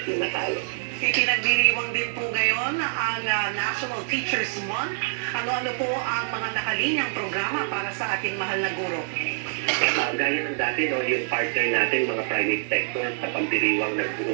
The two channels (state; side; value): silent; left; digital silence